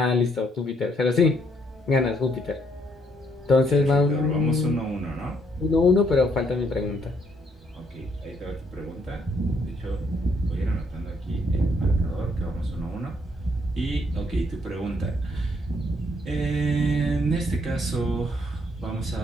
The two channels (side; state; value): both; normal; correlation 0.70